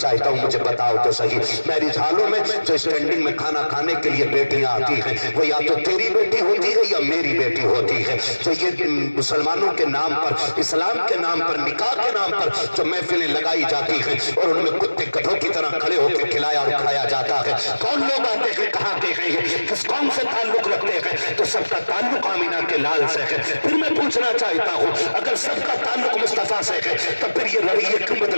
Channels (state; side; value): inverted; both; correlation -1.00